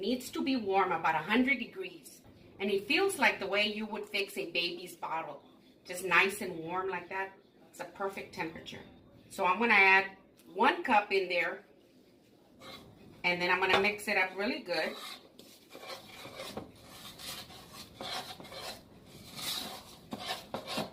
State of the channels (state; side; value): identical; both; correlation 1.00